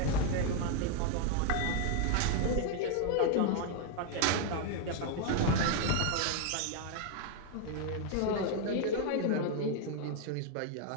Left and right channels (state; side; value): different; both; correlation 0.00